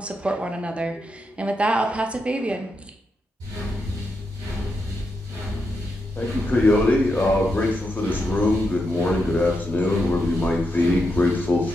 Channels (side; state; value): both; normal; correlation 0.84